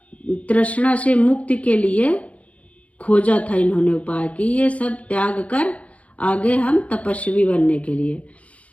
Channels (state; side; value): late; right; 0.065 ms